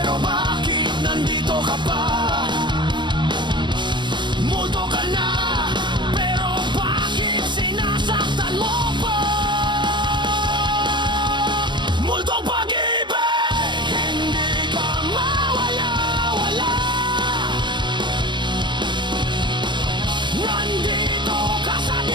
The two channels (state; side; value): late; left; 0.22 ms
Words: bakit nandito ka pa? Multo ka na, pero bakit sinasaktan mo pa? Multong pag-ibig, hindi ka mawala-wala. Nandito ka sa